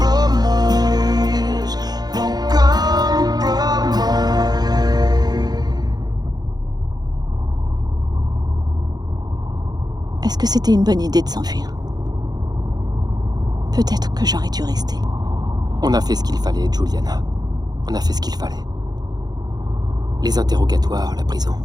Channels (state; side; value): late; left; 0.19 ms